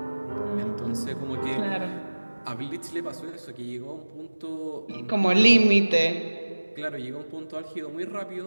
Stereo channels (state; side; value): inverted; both; correlation -1.00